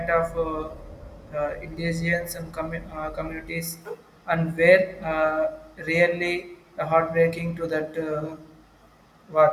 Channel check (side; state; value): both; identical; correlation 1.00